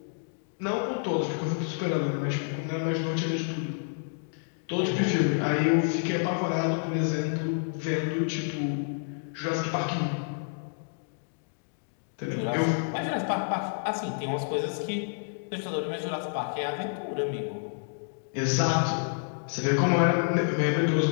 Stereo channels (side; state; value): right; silent; digital silence